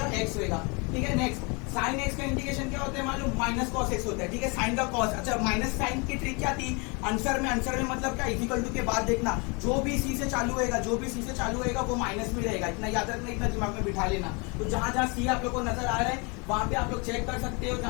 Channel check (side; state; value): right; quieter; 30.9 dB